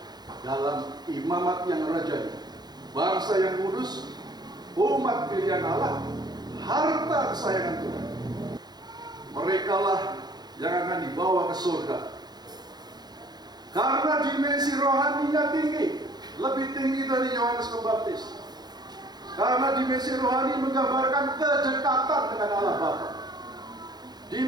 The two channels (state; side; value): late; left; 0.20 ms